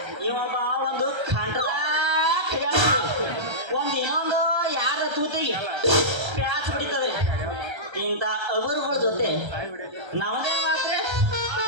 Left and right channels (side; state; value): left; late; 1.3 ms